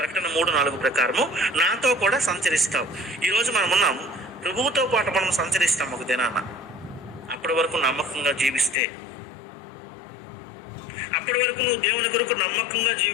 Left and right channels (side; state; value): right; drops out; at 8.8 s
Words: 3:4 ప్రకారము నాతో కూడా సంచరిస్తావు. ఈరోజు మనం ఉన్నాం, ప్రభువుతో పాటు మనం సంచరిస్తాం ఒక దినాన. అప్పటి వరకు నమ్మకంగా జీవిస్తే, అప్పటి వరకు నువ్వు దేవుని కొరకు నమ్మకంగా